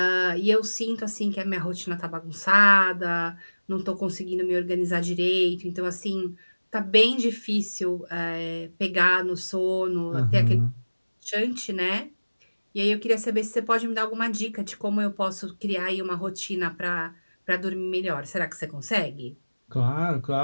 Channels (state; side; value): inverted; both; correlation -1.00